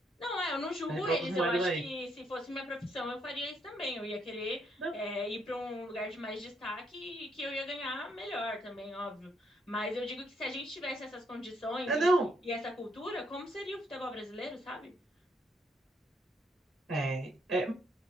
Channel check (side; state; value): both; normal; correlation 0.73